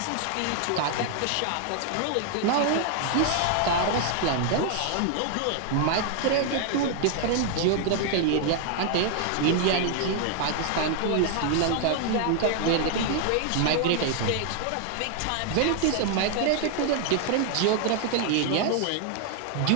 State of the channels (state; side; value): different; both; correlation 0.00